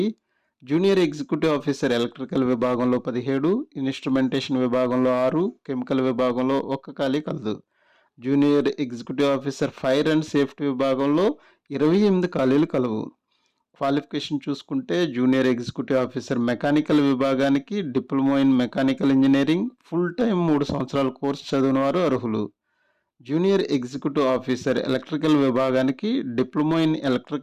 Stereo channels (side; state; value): both; identical; correlation 1.00